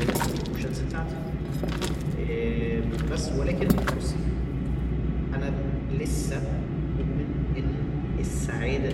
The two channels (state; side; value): identical; both; correlation 1.00